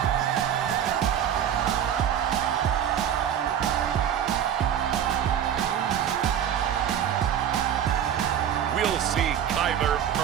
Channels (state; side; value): quieter; left; 9.5 dB